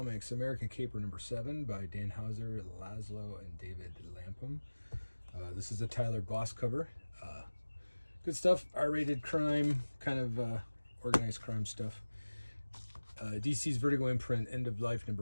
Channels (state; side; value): inverted; both; correlation -1.00